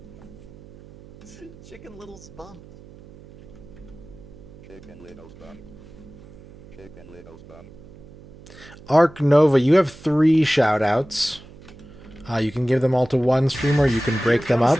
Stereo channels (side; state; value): right; noise; hum, 20 dB below the sound